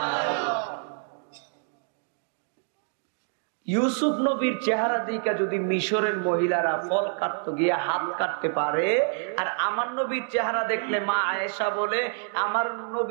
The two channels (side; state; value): left; silent; 60 dB below the other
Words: ইউসুফ নবীর চেহারা দিকে যদি মিশরের মহিলারা ফল কাটতে গিয়ে হাত কাটতে পারে, আর আমার নবীর চেহারা দেখলে মা আয়েশা বলে, আমার